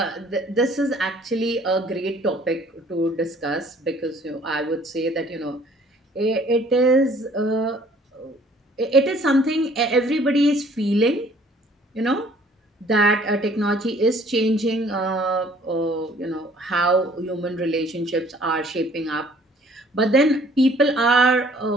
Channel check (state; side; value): normal; both; correlation 0.57